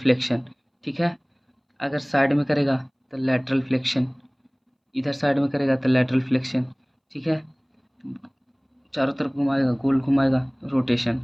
ठीक है। अगर साइड में करेगा तो लैटरल फ्लेक्शन, इधर साइड में करेगा तो लैटरल फ्लेक्शन, ठीक है। चारों तरफ घुमाएगा, गोल घुमाएगा, रोटेशन,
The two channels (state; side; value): identical; both; correlation 1.00